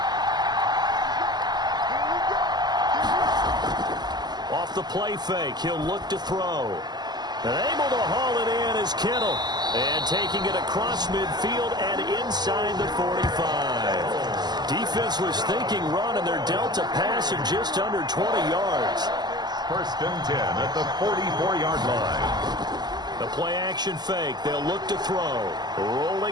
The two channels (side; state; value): left; late; 0.20 ms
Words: Off the play fake, he'll look to throw. And able to haul it in is Kittle. And taking it across midfield and inside the 45. Defense was thinking run, and they're dealt a pass at just under 20 yards. 1st and 10 at the 44-yard line. The play action fake. They'll look to throw.